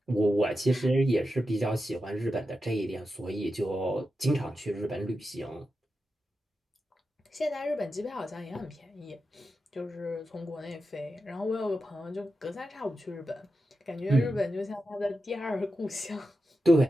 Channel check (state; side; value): normal; both; correlation 0.90